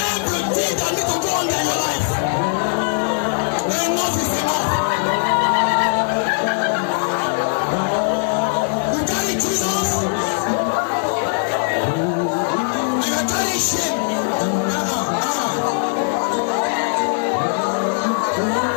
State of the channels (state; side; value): silent; right; digital silence